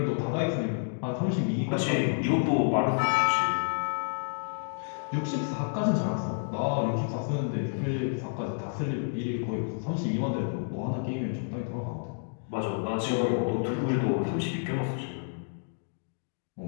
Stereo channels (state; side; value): silent; right; digital silence